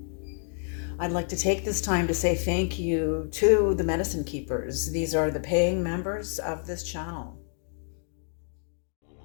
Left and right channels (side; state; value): right; silent; 58 dB below the other